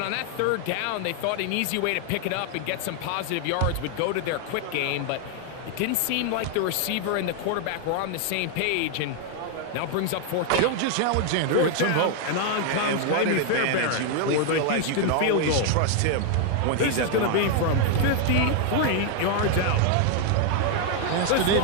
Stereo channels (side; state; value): both; different; correlation 0.00